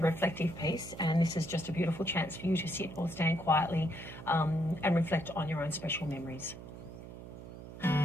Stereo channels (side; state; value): right; noise; hum, 13 dB below the sound